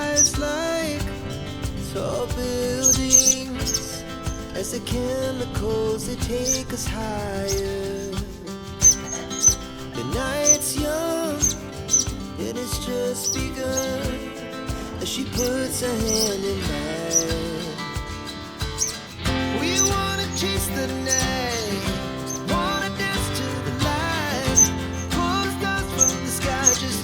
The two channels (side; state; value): both; identical; correlation 1.00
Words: like tall buildings as the chemicals, they take us higher. The night's young, and it's just begun, as she puts her hand in mine. We wanna chase the night, wanna dance to the light, pull stars from the sky, just